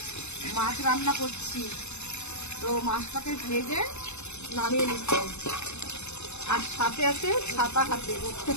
মাছ রান্না করছি। তো মাছটাকে ভেজে নামিয়ে নিচ্ছি। আর সাথে আছে ছাতা হাতে।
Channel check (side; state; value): right; late; 0.81 ms